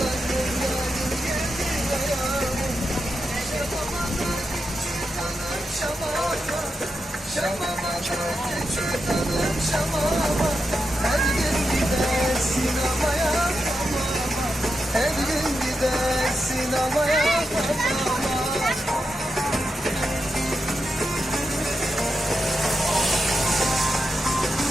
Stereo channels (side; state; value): both; normal; correlation 0.87